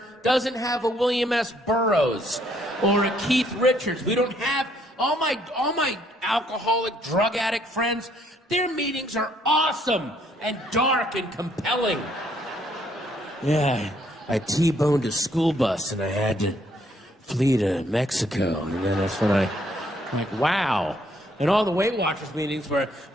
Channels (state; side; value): normal; both; correlation 0.68